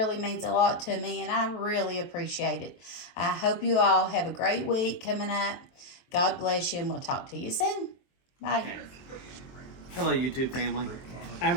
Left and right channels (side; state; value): right; late; 23 ms